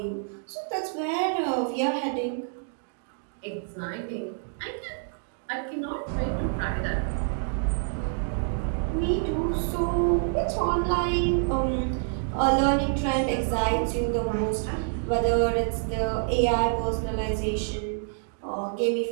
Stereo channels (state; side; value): silent; left; digital silence